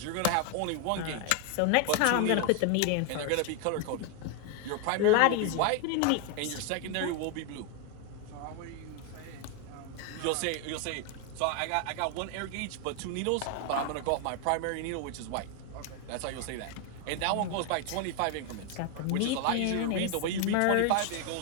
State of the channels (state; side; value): different; both; correlation 0.01